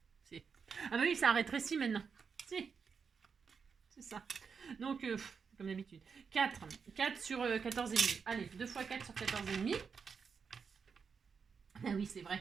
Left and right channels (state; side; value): quieter; left; 5.9 dB